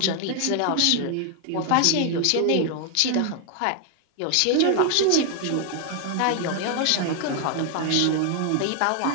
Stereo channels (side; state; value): both; different; correlation 0.00